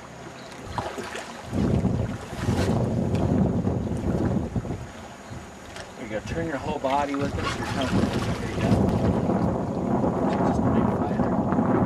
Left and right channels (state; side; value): identical; both; correlation 1.00